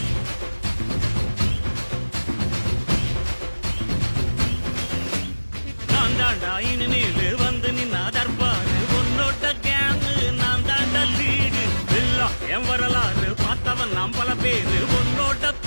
நான் தாண்டா இனிமேலு வந்து நின்னா தர்பாரு உன்னோட கேங்கு நான் தாண்டா லீடு எல்லாம் என் வரலாறு பார்த்தவன் நாம் பல பேரு உன்னோட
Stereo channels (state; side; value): inverted; both; correlation -1.00